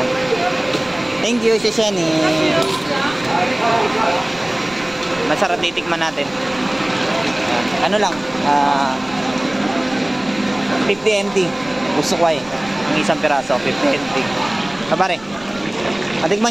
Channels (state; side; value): noise; right; rumble, 23 dB below the sound